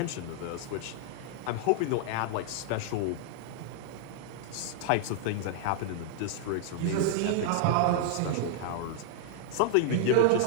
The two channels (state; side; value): different; both; correlation 0.00